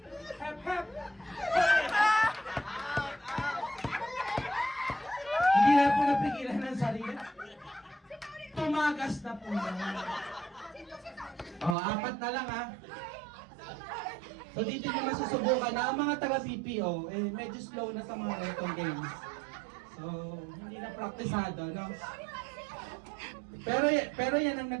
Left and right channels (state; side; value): drops out; left; at 11.8 s